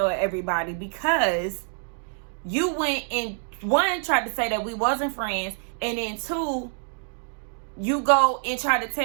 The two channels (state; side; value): silent; left; 61 dB below the other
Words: everybody because you went and, one, tried to say that we wasn't friends, and then two, you go and try to